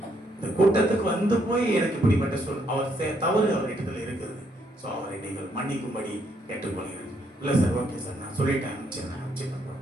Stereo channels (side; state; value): both; normal; correlation 0.73